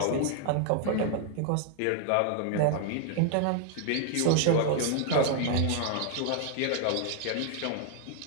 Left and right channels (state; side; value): different; both; correlation 0.00